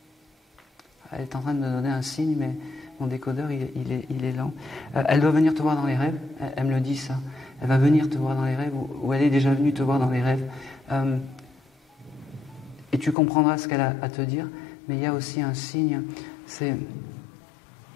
elle est en train de me donner un signe, mais mon décodeur, il est lent. Elle doit venir te voir dans les rêves. Elle me le dit, ça. Elle va venir te voir dans les rêves, ou elle est déjà venue te voir dans les rêves. Et tu comprendras ce qu'elle a à te dire. Mais il y a aussi un signe, c'est...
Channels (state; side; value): drops out; right; at 13.2 s